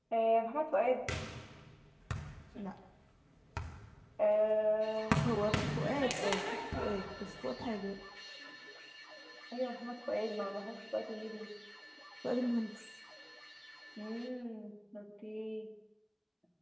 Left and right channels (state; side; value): identical; both; correlation 1.00